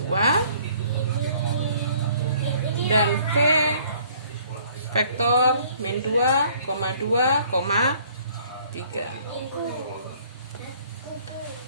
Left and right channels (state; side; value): inverted; both; correlation -0.58